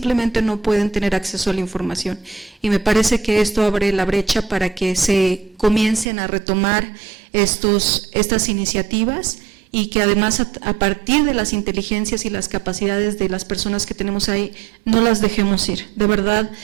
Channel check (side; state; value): left; drops out; at 6.1 s